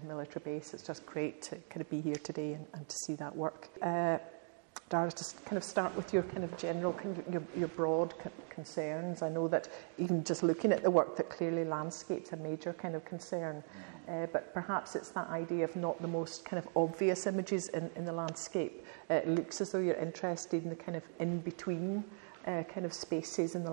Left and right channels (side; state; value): left; silent; 52 dB below the other